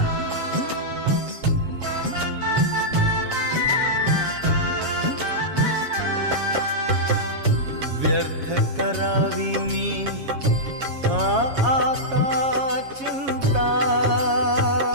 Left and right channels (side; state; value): left; late; 7.3 ms